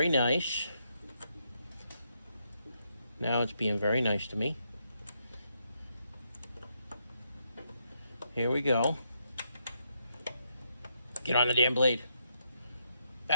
nice. Now it's being very nice to me. Here we go. Get on the damn blade.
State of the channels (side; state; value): both; inverted; correlation -0.79